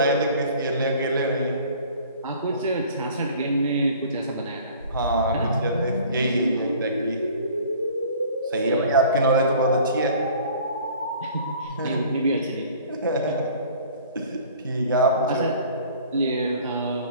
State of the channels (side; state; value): both; inverted; correlation -0.49